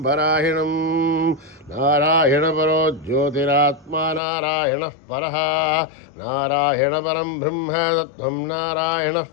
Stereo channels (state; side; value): drops out; right; at 4.2 s